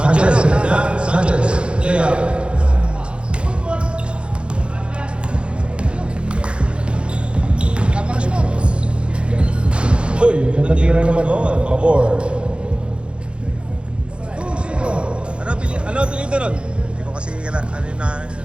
Sanchez, Sanchez, layup. Uy, ganda tira naman noon, pabor. Ano apelido nun? Hindi ko kasi ano na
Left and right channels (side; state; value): left; late; 0.057 ms